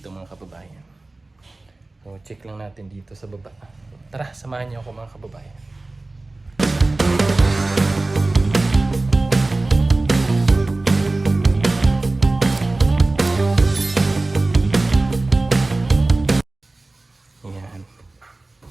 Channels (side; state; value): left; quieter; 3.1 dB